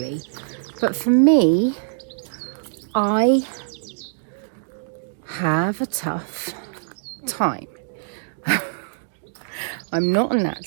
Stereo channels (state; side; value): silent; left; digital silence